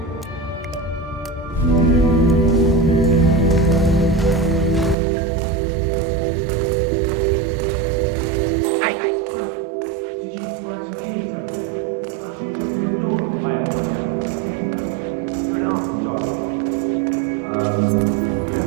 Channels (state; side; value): drops out; left; at 5.0 s